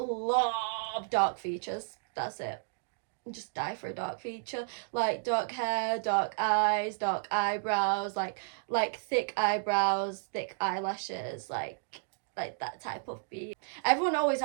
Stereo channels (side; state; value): left; silent; digital silence